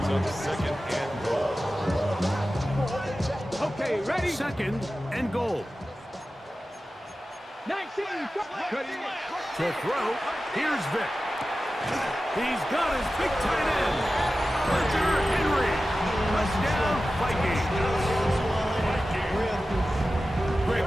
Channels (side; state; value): both; normal; correlation 0.94